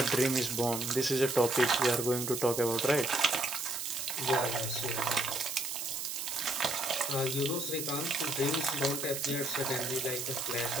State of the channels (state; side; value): noise; right; hiss, 4 dB below the sound